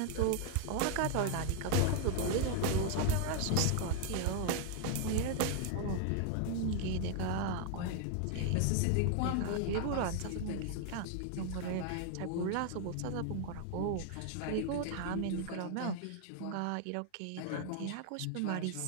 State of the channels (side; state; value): both; different; correlation 0.00